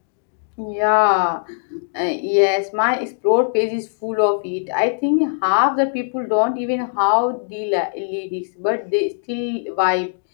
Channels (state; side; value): silent; right; digital silence